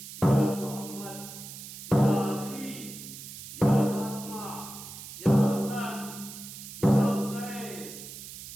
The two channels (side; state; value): right; noise; hiss, 12 dB below the sound